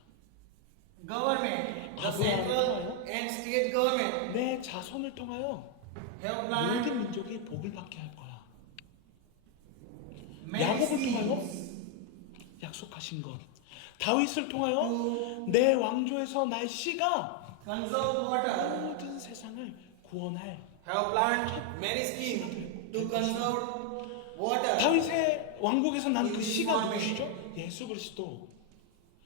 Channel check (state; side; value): different; both; correlation 0.01